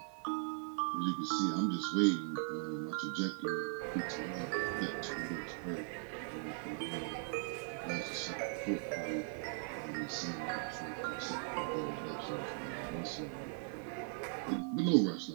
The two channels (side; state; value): left; quieter; 38.9 dB